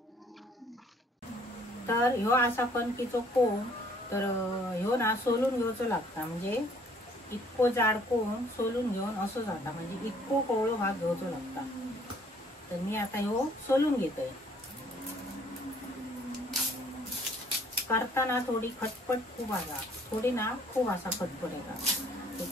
तर ह्यो असा कणकीचो कोंब, तर ह्यो ना सोलून घेऊचो लागता, म्हणजे इतको जाड कोंब सोलून घेऊन असं जाता, म्हणजे इतको कवळो भाग घेऊचो लागता। तर मी आता ह्यो सोलून घेतोय। करताना थोडी खटपट खूप आला, थोडी ना खूप असा खटपट येता।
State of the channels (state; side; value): normal; both; correlation 0.60